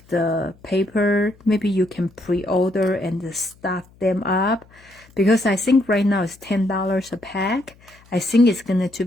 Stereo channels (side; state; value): left; noise; hum, 28 dB below the sound